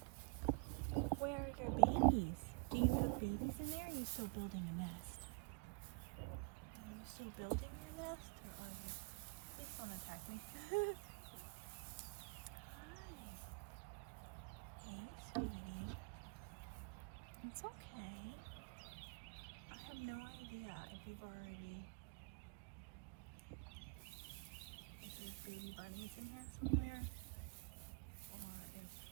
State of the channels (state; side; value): quieter; left; 37.1 dB